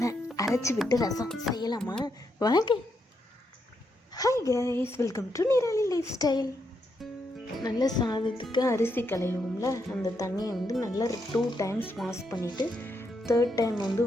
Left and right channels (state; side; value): normal; both; correlation 0.80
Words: அரைச்சி விட்டு ரசம் செய்யலாமா? வாங்க. Hi guys, welcome to Nirali life style. நல்ல சாதத்துக்கு அரிசி களையும்ல, அந்த தண்ணியை நல்லா 2 times வாஷ் பண்ணிவிட்டு 3rd time